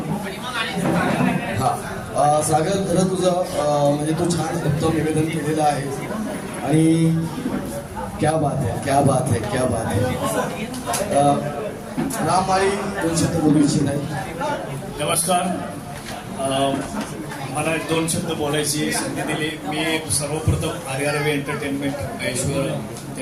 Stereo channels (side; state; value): both; identical; correlation 1.00